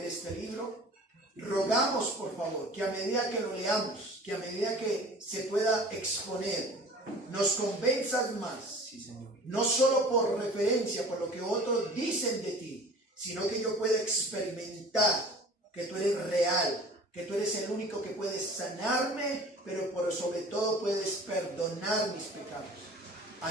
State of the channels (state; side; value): normal; both; correlation 0.44